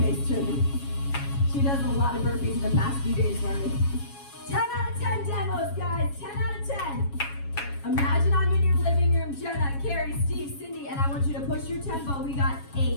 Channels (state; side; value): late; right; 7.2 ms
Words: Trinity. She does a lot of burpees in the past few days for me. 10 out of 10 demos, guys, 10 out of 10. Imagine I'm in your living room, Jenna, Carrie, Steve, Cindy, and I want you to push your tempo. We got